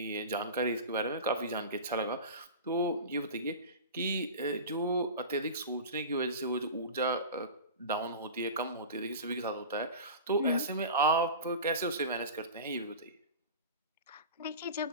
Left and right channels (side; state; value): both; inverted; correlation -0.31